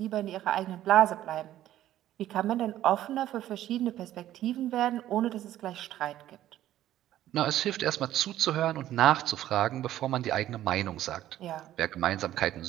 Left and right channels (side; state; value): left; quieter; 13.1 dB